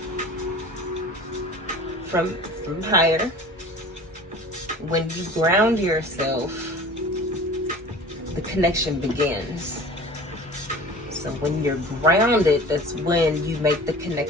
from higher, when you ground yourself, the connection begins. So when you're grounded, that's when you make the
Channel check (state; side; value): normal; both; correlation 0.41